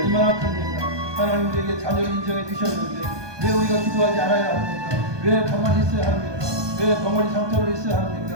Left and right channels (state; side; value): late; left; 1.2 ms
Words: 큽니까? 하나님 우리에게 자녀를 인정해 주셨는데 왜 우리가 기도하지 않아야 합니까? 왜 가만히 있어야 합니까? 왜 덩어리 상태로 있어야